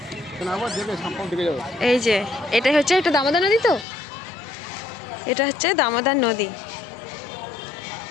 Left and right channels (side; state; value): right; drops out; at 3.9 s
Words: এই যে এটাই হচ্ছে, এটা দামোদর নদী, তো এটা হচ্ছে দামোদর নদী।